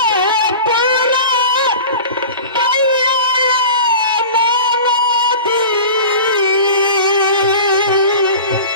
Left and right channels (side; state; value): both; inverted; correlation -0.36